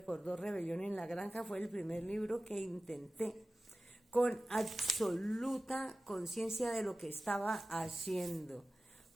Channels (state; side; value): normal; both; correlation 0.96